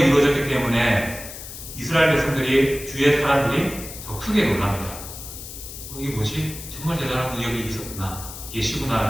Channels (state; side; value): noise; left; hiss, 12 dB below the sound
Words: 이루어졌기 때문에 이스라엘 백성들이, 주의 사람들이 더 크게 놀랍니다. 이게 뭐지? 정말 대단한 능력이 있었구나,